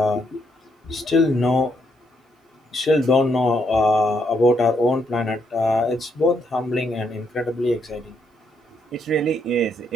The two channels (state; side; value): normal; both; correlation 0.75